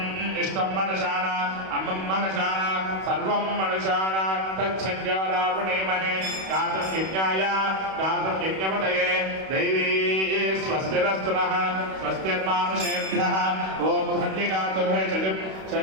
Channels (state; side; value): late; left; 32 ms